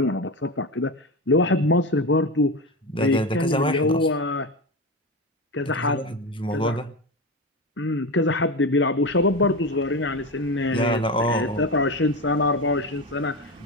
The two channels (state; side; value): normal; both; correlation 0.20